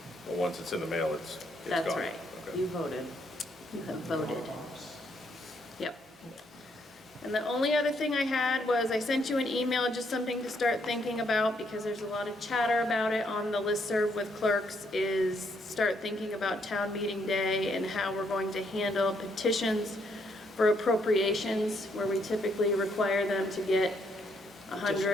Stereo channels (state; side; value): normal; both; correlation 0.73